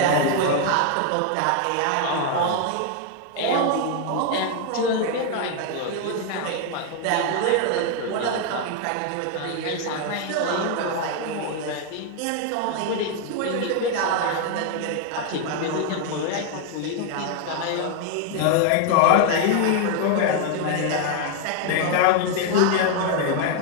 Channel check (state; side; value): different; both; correlation 0.01